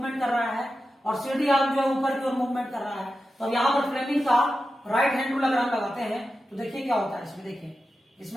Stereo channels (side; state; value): both; normal; correlation 0.91